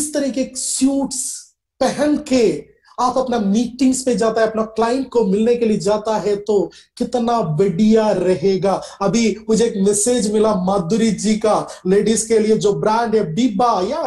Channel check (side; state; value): both; identical; correlation 1.00